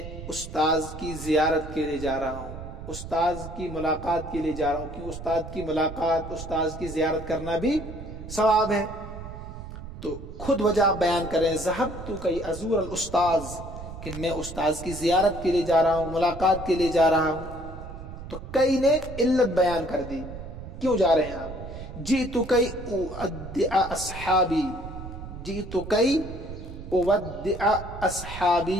استاذ کی زیارت کے لیے جا رہا ہوں، استاذ کی ملاقات کے لیے جا رہا ہوں، کیونکہ استاد کی ملاقات، استاذ کی زیارت کرنا بھی ثواب ہے، تو خود وجہ آپ بیان کریں، ذہبت کئی ازور الاستاذ، کہ میں استاذ کی زیارت کے لیے جا رہا ہوں، ملاقات کے لیے جا رہا ہوں، تو کئی نے علت بیان کر دی، کیوں جا رہے ہیں آپ، جئت کئی اودع اصحابی، جئت کئی اودع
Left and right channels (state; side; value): noise; right; rumble, 11 dB below the sound